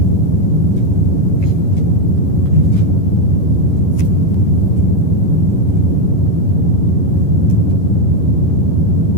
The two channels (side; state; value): right; late; 11 ms